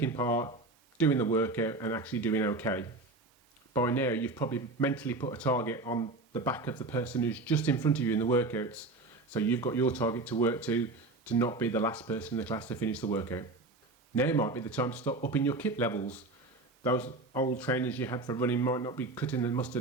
part, doing the workout and actually doing okay. By now you've probably mentally put a target on the back of the person who's just in front of you in the workouts, so you've got your target to work to not be the last person in the class to finish the workout. Now might be the time to start upping your kit levels. Those old trainers you had for running might not be cutting the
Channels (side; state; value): left; quieter; 3.2 dB